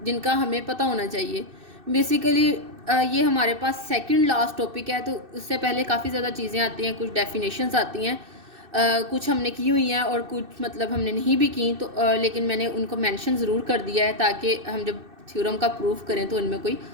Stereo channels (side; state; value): left; late; 2.6 ms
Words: जिनका हमें पता होना चाहिए। बेसिकली ये हमारे पास सेकंड लास्ट टॉपिक है, तो उससे पहले काफ़ी ज़्यादा चीज़ें आती हैं, कुछ डेफिनेशंस आती हैं। कुछ हमने की हुई हैं और कुछ मतलब हमने नहीं भी की, तो लेकिन मैंने उनको मेंशन ज़रूर कर दिया है ताकि हम जब थ्योरम का प्रूफ करें तो इनमें कोई